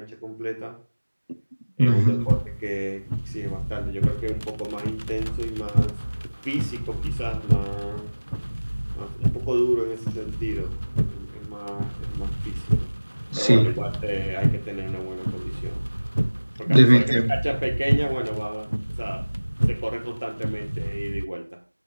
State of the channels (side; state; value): both; inverted; correlation -1.00